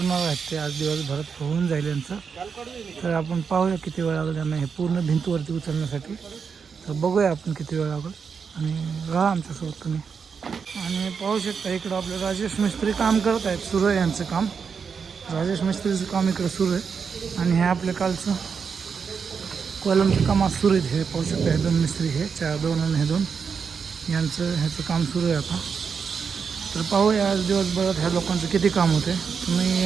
आहेत ते आज दिवसभरात होऊन जाईल यांचं. तर आपण पाहूया किती वेळ लागेल त्यांना हे पूर्ण भिंतवरती उचलण्यासाठी. तर बघूया आपण किती वेळ लागेल आणि राहा आमच्यासोबत तुम्ही. आणि पाहू शकता इकडं आपले राजेश मिस्त्री काम करत आहेत. सुरू आहे यांचं काम. राजेश मिस्त्रीचं काम इकडं सुरू आहे आणि हे आपल्या कालचं कॉलमचं काम आज सुरू आहे. हे पाहू शकता हे दोन मिस्त्री हे 4-2 आणि हे 2 यांचं ह्याचं काम सुरू आहे आता. तर पाहूया आज दिवसभरात ह्या लोकांचं किती काम होते. तुम्ही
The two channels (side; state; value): left; quieter; 6.1 dB